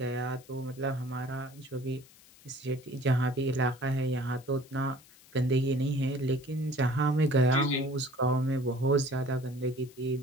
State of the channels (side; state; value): left; noise; hiss, 25 dB below the sound